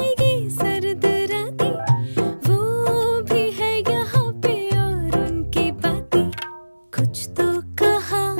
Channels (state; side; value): inverted; both; correlation -1.00